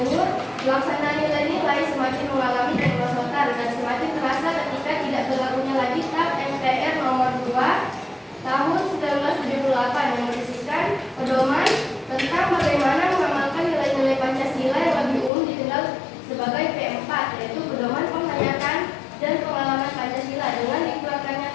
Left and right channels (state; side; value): drops out; right; at 15.3 s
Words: Pelaksanaan nilai-nilai semakin mengalami kemerosotan dan semakin terasa ketika tidak berlakunya lagi TAP MPR nomor 2 tahun 1978 yang berisikan pedoman tentang bagaimana mengamalkan nilai-nilai Pancasila yang lebih umum dikenal sebagai P4, yaitu pedoman penghayatan dan pengalaman Pancasila dengan dikeluarkannya